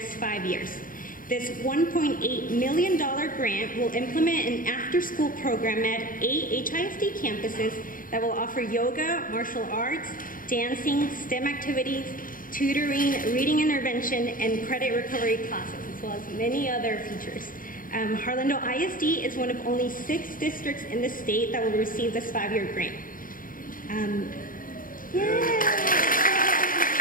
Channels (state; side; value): late; right; 0.40 ms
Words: 5 years. This $1.8 million grant will implement an after-school program at 8 HISD campuses that will offer yoga, martial arts, dancing, STEM activities, tutoring, reading intervention, and credit recovery classes, as well as many other features. Harlandale ISD is one of only 6 districts in the state that will receive this 5-year grant.